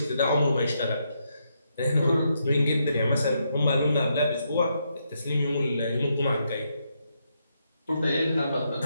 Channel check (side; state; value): both; inverted; correlation -0.80